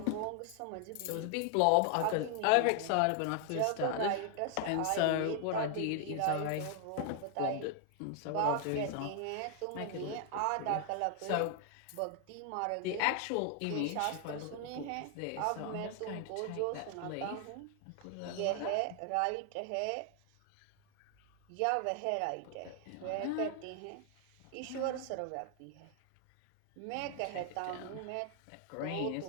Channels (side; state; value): both; different; correlation 0.00